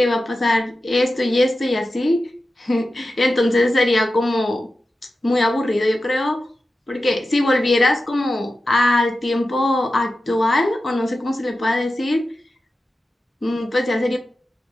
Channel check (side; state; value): both; normal; correlation 0.93